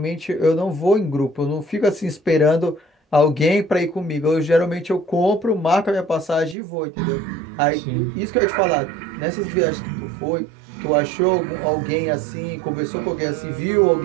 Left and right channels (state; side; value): drops out; left; at 6.6 s